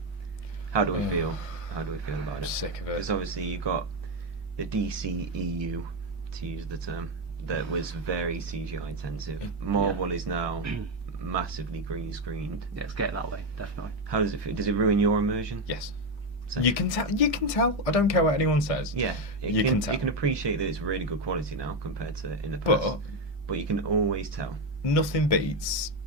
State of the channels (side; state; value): both; normal; correlation 0.09